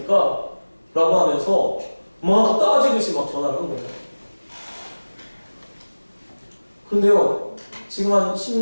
라고 하면서 막 따지듯이 막 전화를 한 거예요. 그런데요, 지금 한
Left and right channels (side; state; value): both; inverted; correlation -1.00